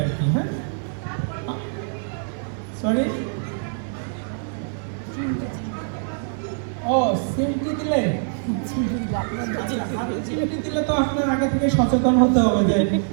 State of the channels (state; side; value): silent; left; digital silence